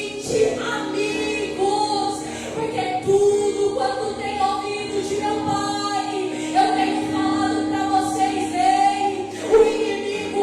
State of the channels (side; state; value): both; identical; correlation 1.00